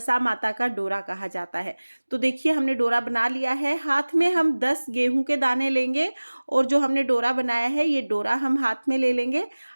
माता का डोरा कहा जाता है। तो देखिए, हमने डोरा बना लिया है। हाथ में हम 10 गेहूं के दाने लेंगे और जो हमने डोरा बनाया है ये डोरा हम हाथ में ले लेंगे।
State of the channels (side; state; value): both; inverted; correlation -1.00